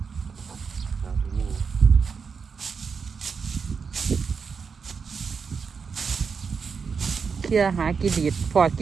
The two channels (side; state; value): left; quieter; 5.7 dB